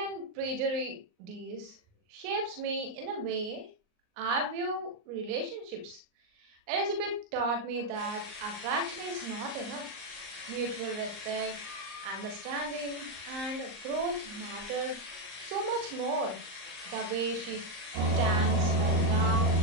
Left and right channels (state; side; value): late; left; 38 ms